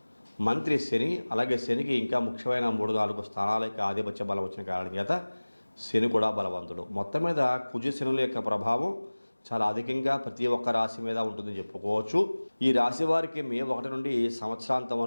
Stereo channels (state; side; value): inverted; both; correlation -1.00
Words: మంత్రి శని, అలాగే శనికి ఇంకా ముఖ్యమైన 3-4 స్థానాలకి ఆధిపత్య బలం వచ్చిన కారణం చేత శని కూడా బలవంతుడు. మొత్తం మీద కుజ శనుల యొక్క ప్రభావం చాలా అధికంగా ప్రతి ఒక్క రాశి మీద ఉంటుందని చెప్పుకోవచ్చు. ఈ రాశి వారికి మే 1 నుండి సంవత్సరాంతం